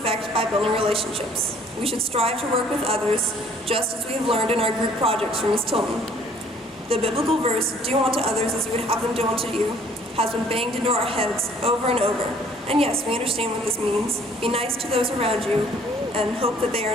by building relationships. We should strive to work with others, just as we have learned in our group projects from Ms. Tillman. The biblical verse, do unto others as you would have them do unto you, has been banged into our heads over and over. And yes, we understand what this means. Be nice to those around you and hope that they are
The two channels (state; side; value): normal; both; correlation 0.58